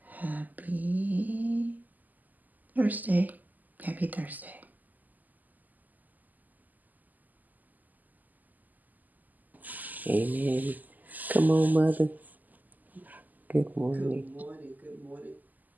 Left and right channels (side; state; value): left; late; 0.083 ms